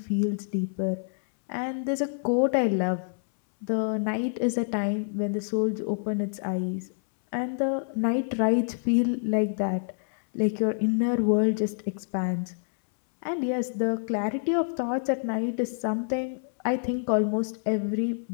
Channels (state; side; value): silent; right; 60 dB below the other